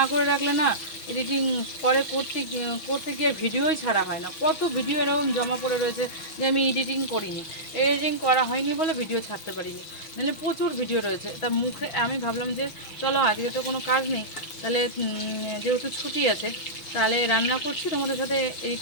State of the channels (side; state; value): right; late; 6.2 ms